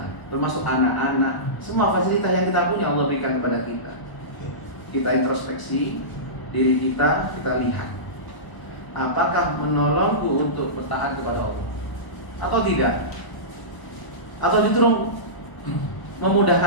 termasuk anak-anak, semua fasilitas yang kita punya Allah berikan kepada kita. Kita introspeksi diri kita lihat, apakah menolongku untuk bertaat kepada Allah atau tidak, atau justru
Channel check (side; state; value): right; late; 1.0 ms